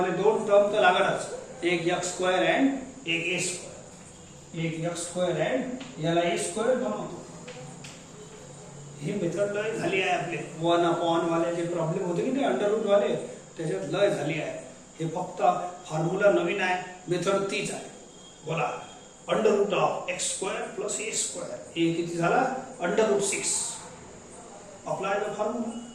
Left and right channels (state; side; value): identical; both; correlation 1.00